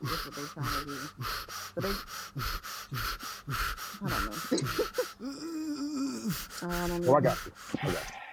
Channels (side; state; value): both; identical; correlation 1.00